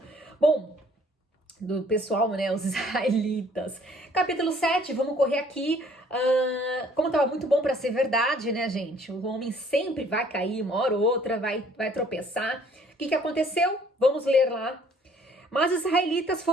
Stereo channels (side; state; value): both; normal; correlation 0.58